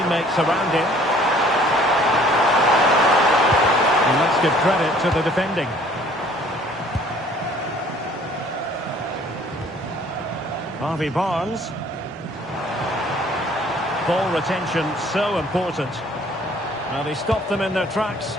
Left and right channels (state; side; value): normal; both; correlation 0.56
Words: around him. And let's give credit to the defending. Harvey Barnes. Ball retention so important. Now they stopped them in their tracks.